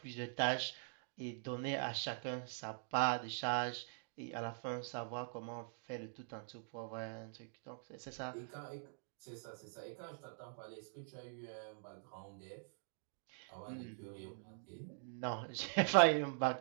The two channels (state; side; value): silent; left; digital silence